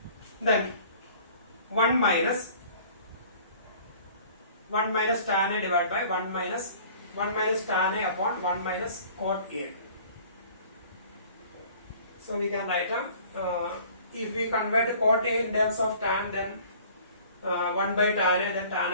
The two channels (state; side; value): inverted; both; correlation -0.50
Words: then 1 minus tan A divided by 1 minus tan A upon 1 minus cot A. So we can write if we convert cot A in terms of tan, then 1 by tan A, then tan